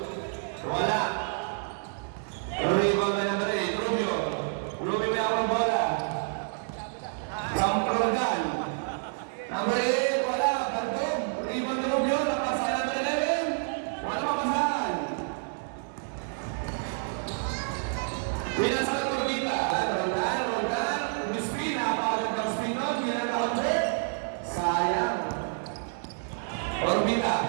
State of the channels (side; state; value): left; silent; 59 dB below the other